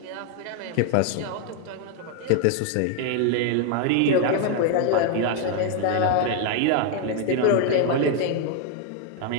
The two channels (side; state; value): both; different; correlation 0.00